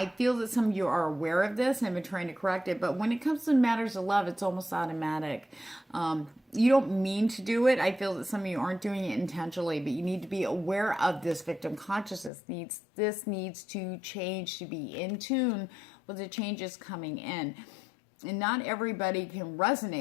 feel that some of you are aware of this and have been trying to correct it, but when it comes to matters of love, it's almost automatic. you don't mean to do it. I feel that some of you aren't doing it intentionally, but you need to be aware of this victim consciousness. This needs to change, to be in tune with the changes coming in. And not everybody can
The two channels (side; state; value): right; drops out; at 12.3 s